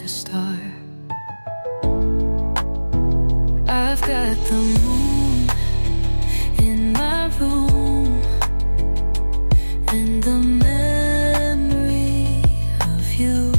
a star. I've got the moon in my room, and the memory of you.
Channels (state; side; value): inverted; both; correlation -1.00